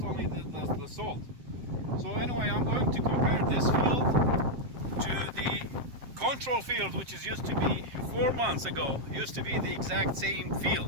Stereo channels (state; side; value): late; left; 7.6 ms